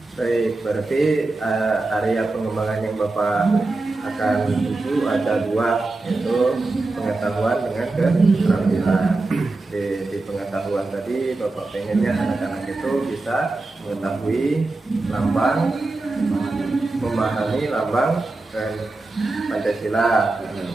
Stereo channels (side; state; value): left; quieter; 3.2 dB